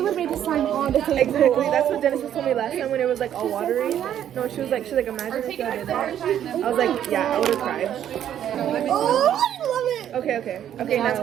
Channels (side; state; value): left; quieter; 10.4 dB